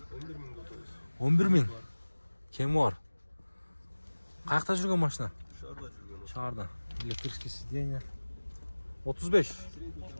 11.000. Кем бар? Қаяқта жүрген машина? Шарда. Электрический сиденье. 35.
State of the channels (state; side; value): inverted; both; correlation -1.00